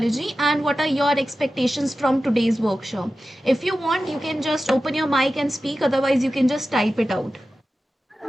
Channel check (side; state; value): both; normal; correlation 0.94